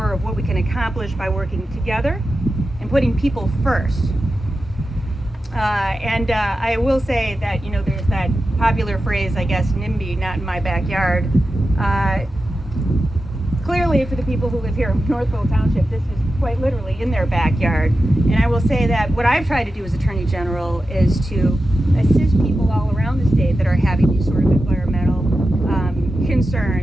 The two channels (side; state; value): both; normal; correlation 0.91